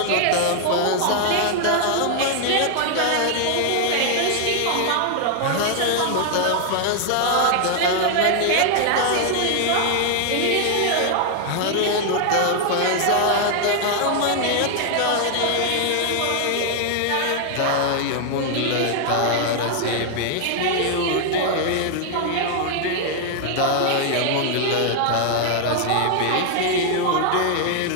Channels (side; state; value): both; different; correlation 0.00